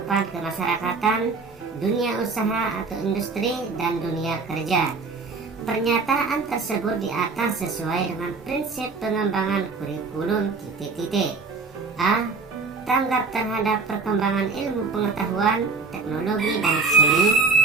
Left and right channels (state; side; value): quieter; left; 4.3 dB